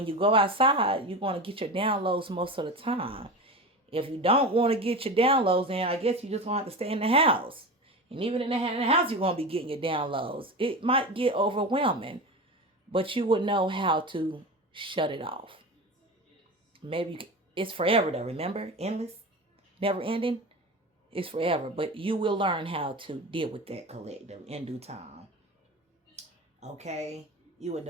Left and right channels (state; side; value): normal; both; correlation 0.27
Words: you go outside, you're going to get your downloads most of the time. If you don't want to get your downloads in, I guess you just going to have to stay in the house. And even in the house, you're going to be getting your downloads. It might get overwhelming. But you would know how to shut it off. Maybe it's forever though, remember? Endless? Never ending? It's forever. But you will learn how to deal with that collective in due time. Okay? You a